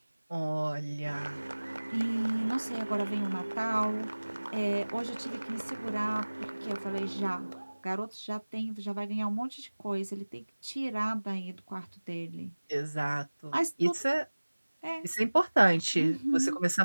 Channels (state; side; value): inverted; both; correlation -1.00